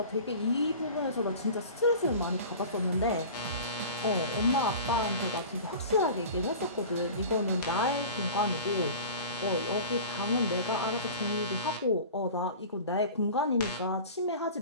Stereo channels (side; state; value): both; inverted; correlation -0.38